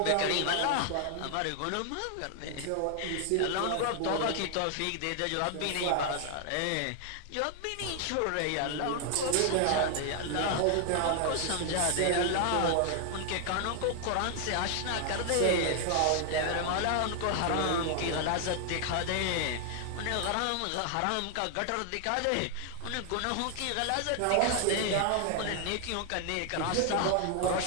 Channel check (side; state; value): both; different; correlation 0.00